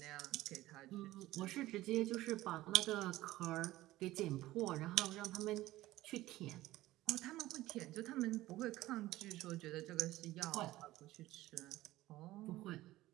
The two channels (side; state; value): left; quieter; 16.6 dB